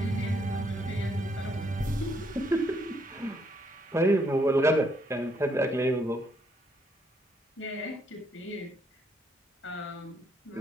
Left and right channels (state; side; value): normal; both; correlation 0.73